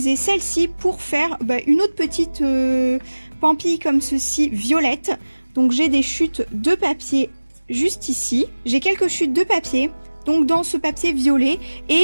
celle-ci pour faire une autre petite pampille comme ceci violette. Donc j'ai des chutes de papier juste ici. J'ai quelques chutes de papier donc dans ce papier violet.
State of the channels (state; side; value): inverted; both; correlation -1.00